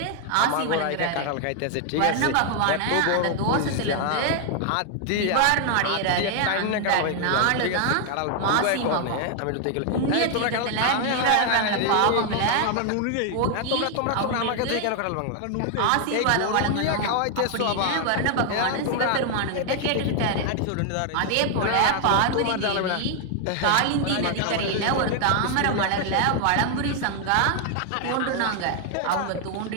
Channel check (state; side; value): different; both; correlation 0.00